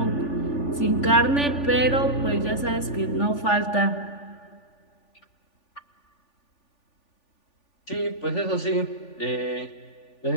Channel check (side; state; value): right; late; 3.4 ms